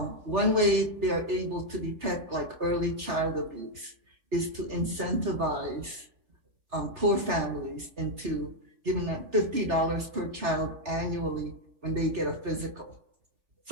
way they are able to detect like early child abuse is to incentivize poor families into giving them $50 per child annually when they get a physical.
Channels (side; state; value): left; late; 3.4 ms